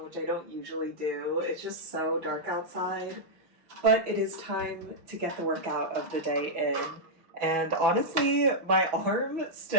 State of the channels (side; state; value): left; late; 6.1 ms